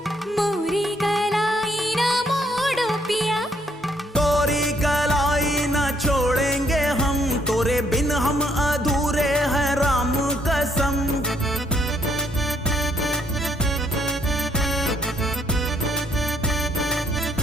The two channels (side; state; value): both; normal; correlation 0.70